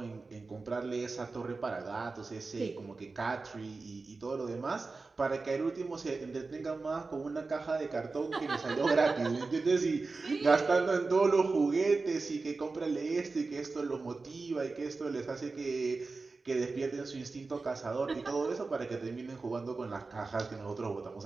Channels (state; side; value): quieter; left; 3.9 dB